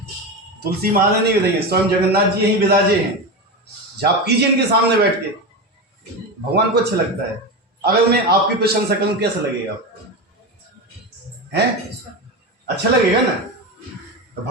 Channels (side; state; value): both; normal; correlation 0.19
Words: तुलसी महाराज नहीं विराजे, स्वयं जगन्नाथ जी यहीं विराजे हैं। जाप कीजिए इनके सामने बैठ के, भगवान को अच्छा लगता है। अगर मैं आपकी प्रशंसा करूं कैसा लगेगा आपको? हैं? अच्छा लगेगा ना? तो